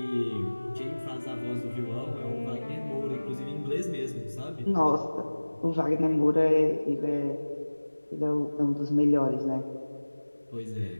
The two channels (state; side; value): inverted; both; correlation -1.00